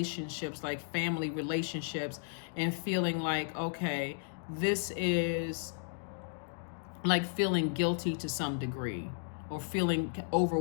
like family relationships, and feeling like, okay, this is like feeling guilty to some degree, or feeling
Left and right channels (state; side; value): silent; right; digital silence